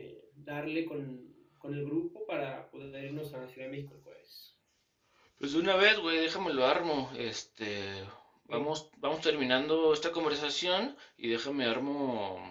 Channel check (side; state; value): both; identical; correlation 1.00